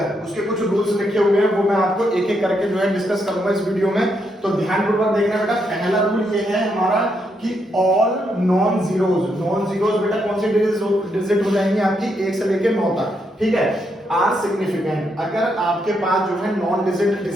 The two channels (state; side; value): normal; both; correlation 0.79